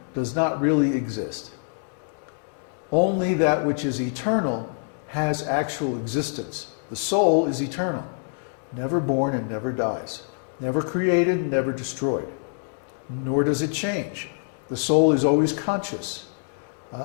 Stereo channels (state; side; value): silent; right; 61 dB below the other